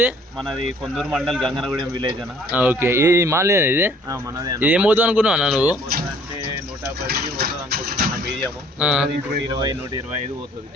మనది కొందూరు మండల్ గంగనగూడెం విలేజ్ అన్న. ఓకే, ఈ మాల్ ఇది మనది. ఇది ఏం పోతుంది అనుకున్నావు నువ్వు? అంటే 110 పోతుంది అనుకుంటున్నా. మీడియం 120-125 పోతుంది.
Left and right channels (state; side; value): normal; both; correlation 0.57